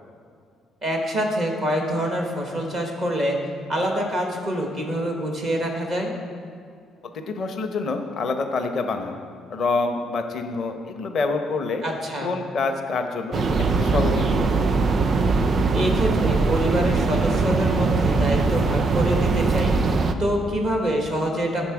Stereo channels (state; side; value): normal; both; correlation 0.74